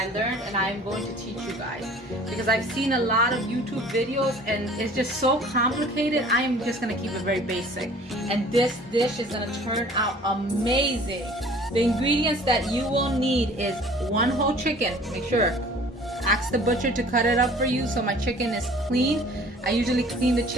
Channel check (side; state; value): both; normal; correlation 0.49